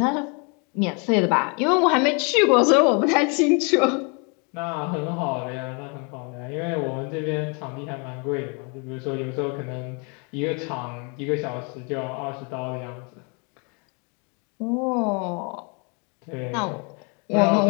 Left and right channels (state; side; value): quieter; right; 34.6 dB